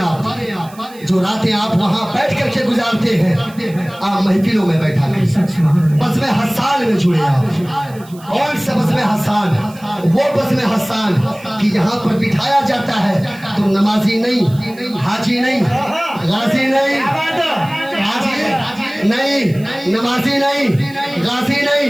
जो रातें आप वहाँ बैठ करके गुजारते हैं, आप महफिलों में बैठा कर बज़्म हस्सान में जुड़े। आप कौन सा बज़्म हस्सान? वो बज़्म हस्सान कि यहाँ पर बिठाया जाता है, तुम नमाजी नहीं, हाजी नहीं, गाजी नहीं, हाजी नहीं, नमाजी नहीं, गाजी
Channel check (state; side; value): noise; right; hiss, 23 dB below the sound